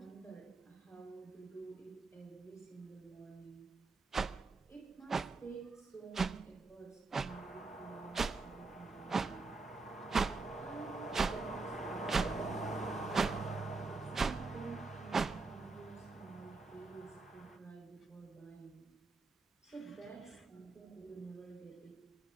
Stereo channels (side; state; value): left; quieter; 3.8 dB